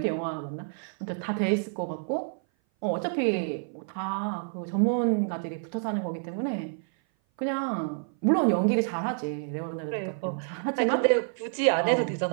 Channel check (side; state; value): left; silent; 56 dB below the other